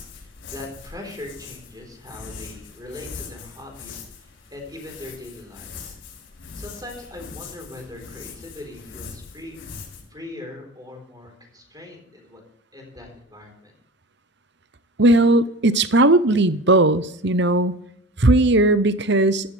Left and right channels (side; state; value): both; normal; correlation 0.34